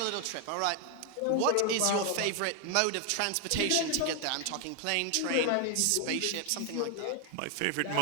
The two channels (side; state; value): both; different; correlation 0.00